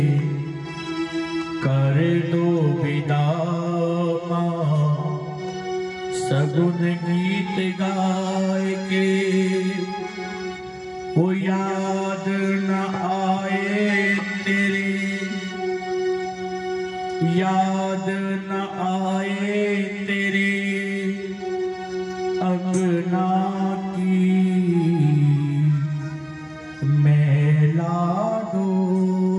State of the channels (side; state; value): both; identical; correlation 1.00